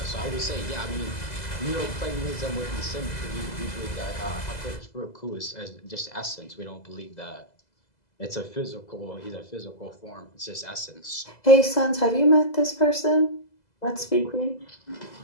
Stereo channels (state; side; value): late; right; 2.0 ms